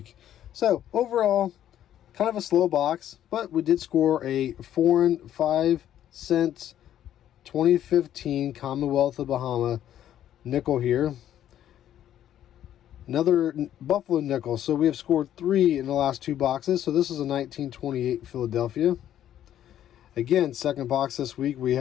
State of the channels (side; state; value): right; quieter; 11.2 dB